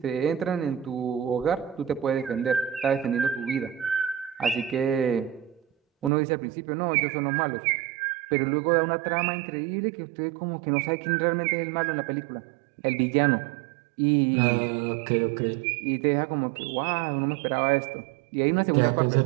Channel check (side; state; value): left; drops out; at 6.1 s